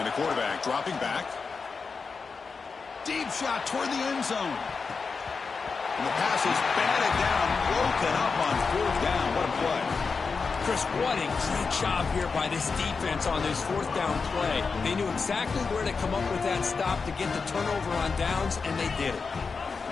the quarterback dropping back. Deep shot toward the end zone. And the pass is batted down, broken up on fourth down. What a play. Chris, what a great job here by this defense on this fourth down play. They knew exactly where to come up with that stop to get the turnover on downs, and they did it.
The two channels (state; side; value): quieter; right; 4.9 dB